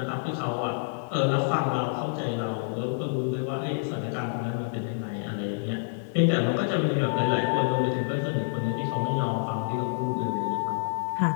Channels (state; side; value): silent; right; digital silence